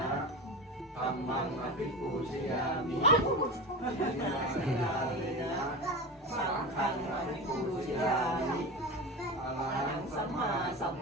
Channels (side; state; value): both; normal; correlation 0.26